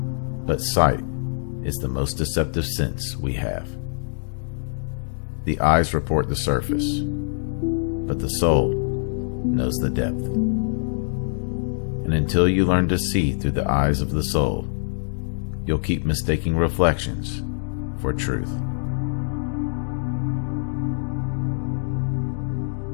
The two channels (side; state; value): right; silent; digital silence